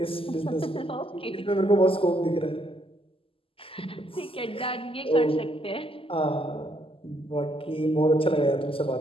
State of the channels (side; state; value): right; late; 0.26 ms